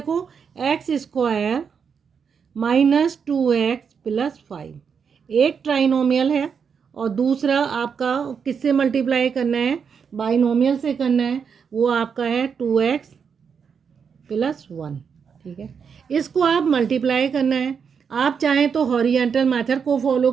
x square minus 2x plus 5 एक ट्राइनोमियल है, और दूसरा आपका किससे मल्टीप्लाई करना है, बाइनोमियल से करना है, वो आपका है 2x प्लस 1। ठीक है, इसको आप मल्टीप्लाई करना है। आप चाहें तो हॉरिजेंटल मेथड को फॉलो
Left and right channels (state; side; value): quieter; left; 6.5 dB